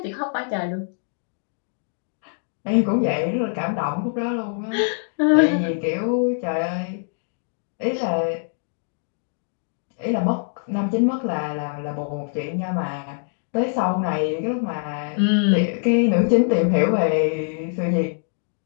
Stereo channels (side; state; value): right; silent; digital silence